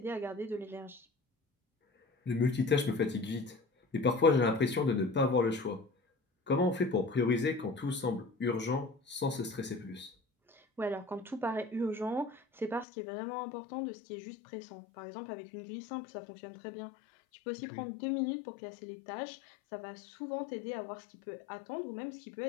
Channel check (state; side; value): drops out; right; at 12.9 s